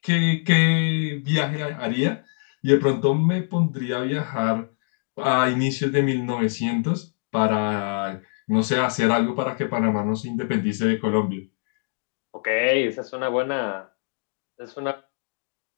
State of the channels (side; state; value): right; silent; digital silence